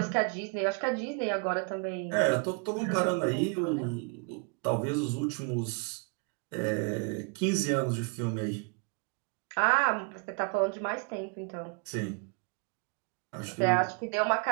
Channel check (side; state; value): left; quieter; 35.4 dB